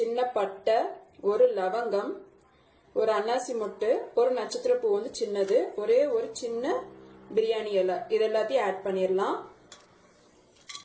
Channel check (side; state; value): both; identical; correlation 1.00